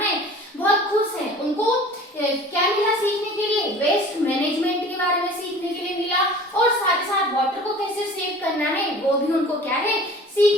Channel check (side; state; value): both; normal; correlation 0.44